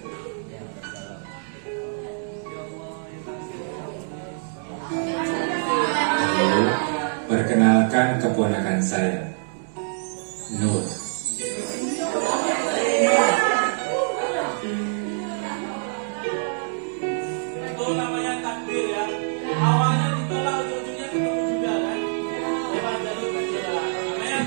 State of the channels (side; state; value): left; silent; digital silence